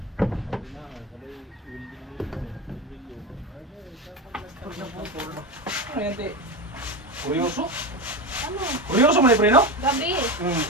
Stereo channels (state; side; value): normal; both; correlation 0.20